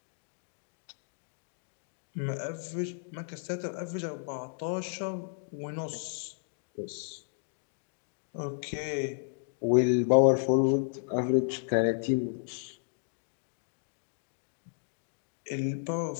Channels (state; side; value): silent; right; digital silence